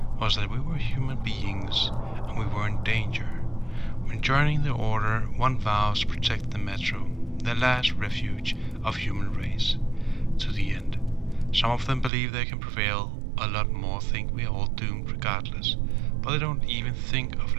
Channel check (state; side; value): drops out; left; at 12.1 s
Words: was that we were human beings and we were in danger. When joining the Order, one vows to protect the Metro, the last refuge of human race, to the end. Some of them believe they can prevail, a lot more think we are all doomed regardless, but they don't even think of